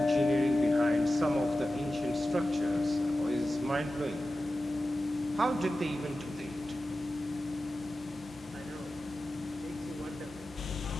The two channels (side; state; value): both; normal; correlation 0.94